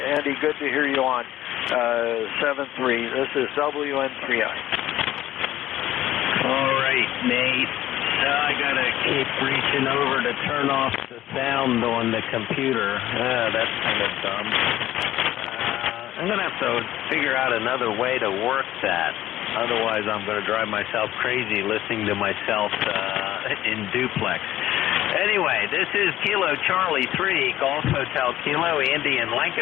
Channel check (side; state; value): right; quieter; 13.9 dB